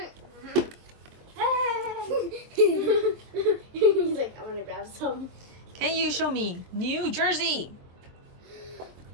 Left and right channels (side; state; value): left; late; 23 ms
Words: He's like, I want to grab some. Can you show me New Jersey?